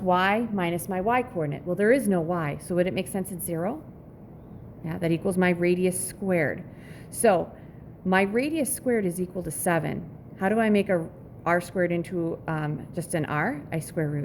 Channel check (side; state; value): both; identical; correlation 1.00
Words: y minus my y coordinate. Well, there is no y, so would it make sense it's 0? Yeah, that equals my radius squared. So my radius squared is equal to 7. How do I make a r squared into just an r? I square